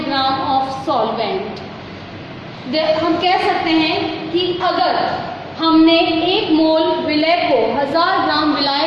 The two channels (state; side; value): identical; both; correlation 1.00